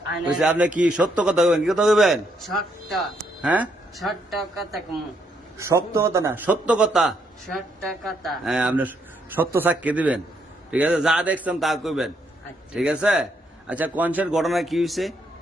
কইছে আপনি কি সত্য কথা কইবেন, কি কথা কইবেন? ছোট্ট হ্যাঁ, ছোট্ট কথা কমু সত্য কথা না, সত্য কথা। ছোট্ট কথা। হ্যাঁ, আপনি সত্য সাক্ষী দিবেন, ঠিক আছে? যা দেখছেন তা কইবেন, আচ্ছা। ঠিক আছে? আচ্ছা কনসের ঘটনা কি হয়েছে?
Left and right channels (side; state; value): both; normal; correlation 0.74